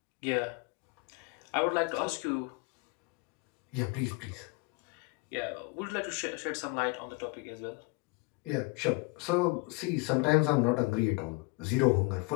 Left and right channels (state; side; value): quieter; right; 26.6 dB